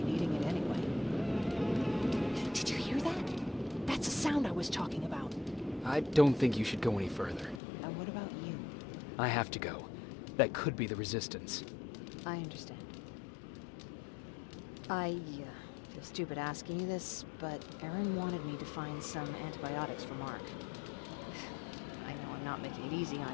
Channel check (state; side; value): drops out; right; at 7.6 s